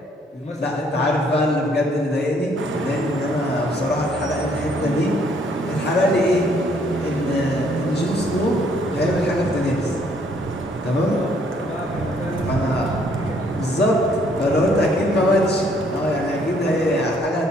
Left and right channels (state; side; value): normal; both; correlation 0.65